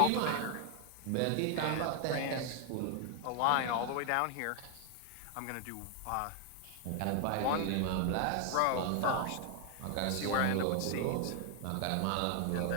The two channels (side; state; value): both; different; correlation 0.00